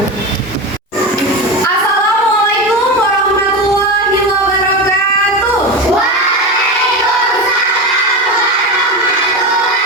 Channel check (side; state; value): both; normal; correlation 0.21